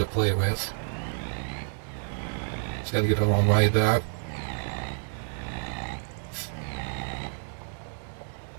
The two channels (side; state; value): left; silent; 59 dB below the other